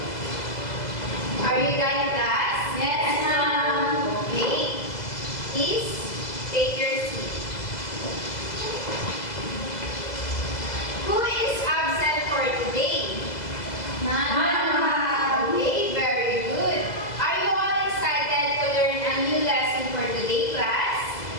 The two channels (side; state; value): right; late; 2.0 ms